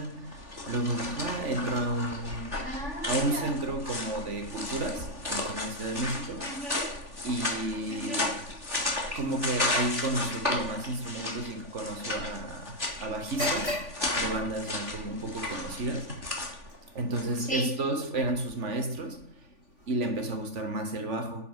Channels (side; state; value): left; late; 3.5 ms